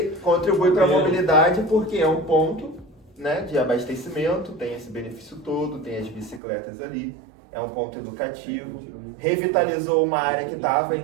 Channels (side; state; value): left; drops out; at 6.4 s